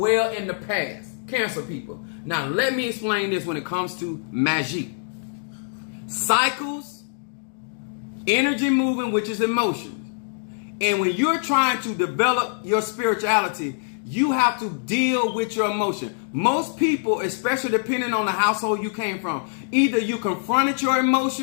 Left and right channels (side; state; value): right; silent; digital silence